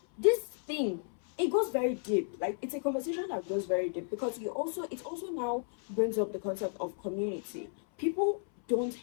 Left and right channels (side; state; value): right; silent; 56 dB below the other